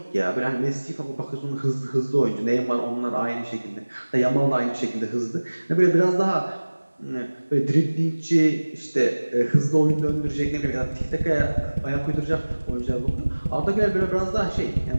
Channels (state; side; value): inverted; both; correlation -1.00